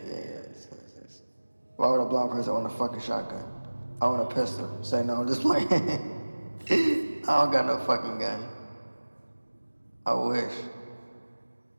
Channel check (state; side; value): inverted; both; correlation -1.00